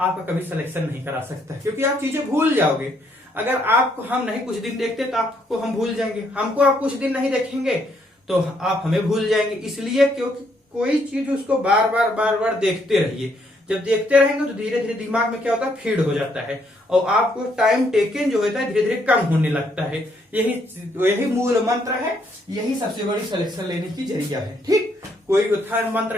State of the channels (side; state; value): both; normal; correlation 0.71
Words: कभी सिलेक्शन नहीं करा सकता, क्योंकि आप चीजें भूल जाओगे। अगर आपको हम नहीं कुछ दिन देखते तो आपको हम भूल जाएंगे, हमको आप कुछ दिन नहीं देखेंगे तो आप हमें भूल जाएंगे। इसलिए क्योंकि कोई चीज उसको बार बार देखते रहिए, जब देखते रहेंगे तो धीरे धीरे दिमाग में क्या होता है, फीड हो जाता है, और आपको टाइम टेकन जो होता है धीरे धीरे कम होने लगता है। यही मूल मंत्र है, यही सबसे बड़ी सिलेक्शन लेने की जरिया है। ठीक, कोई उत्थान